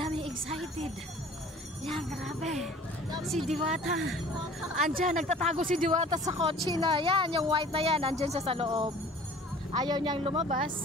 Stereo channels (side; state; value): both; normal; correlation 0.48